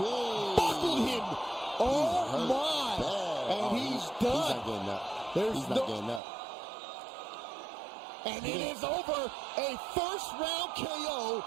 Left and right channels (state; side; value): drops out; left; at 6.2 s